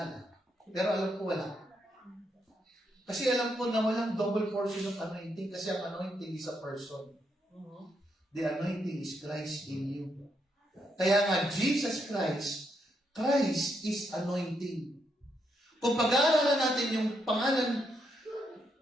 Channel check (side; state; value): both; normal; correlation 0.79